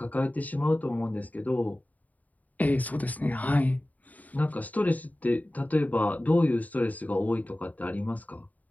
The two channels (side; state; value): right; late; 0.075 ms